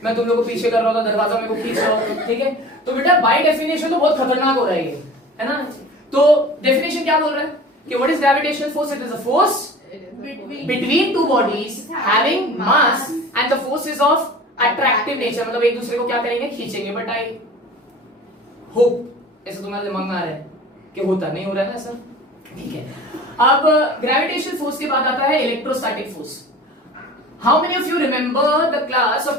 मैं तुम लोग को पीछे कर रहा होता, दरवाजा मेरे को खींच रहा होता, ठीक है। तो बेटा बाय डेफिनेशन तो बहुत खतरनाक हो रहा है ये, है ना। तो डेफिनेशन क्या बोल रहा है कि what is gravitational force, it is a force between two bodies having mass and the force is of attractive nature, मतलब एक दूसरे को क्या करेंगे, खींचेंगे। बट आई होप ऐसा तुम्हारे दिमाग में आ रहा है कि होता नहीं हो रहा है ना सर, ठीक है। अब ग्रेविटेशनल फोर्स के बाद आता है electrostatic force. How many of you remember the class of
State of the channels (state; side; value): normal; both; correlation 0.40